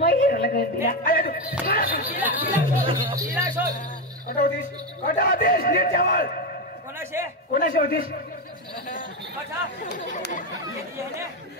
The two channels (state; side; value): normal; both; correlation 0.11